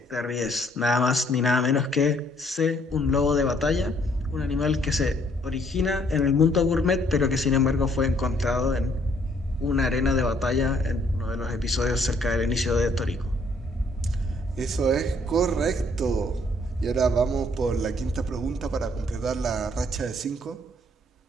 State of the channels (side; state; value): both; normal; correlation 0.65